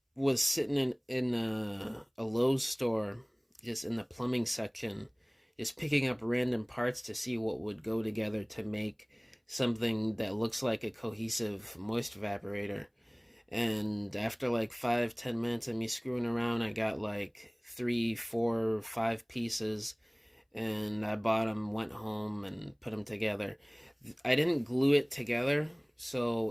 was sitting in a Lowe's store, just in the plumbing section, just picking up random parts to see what would go together to make something that looks like a cohesive moist evaporator. And after like 5-10 minutes of me screwing around, I got like 3, 4, 5 pieces, and I bought them, went home, and put them together. I didn't glue it together, so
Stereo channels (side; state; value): both; identical; correlation 1.00